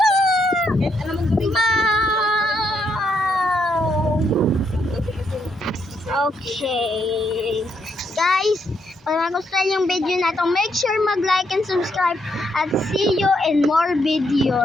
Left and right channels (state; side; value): normal; both; correlation 0.76